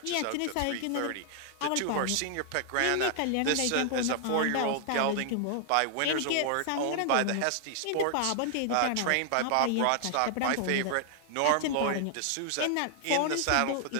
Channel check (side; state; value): both; different; correlation 0.00